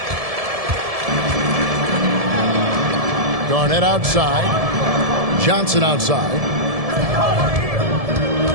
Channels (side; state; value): left; late; 1.7 ms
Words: Garnett outside. Johnson outside.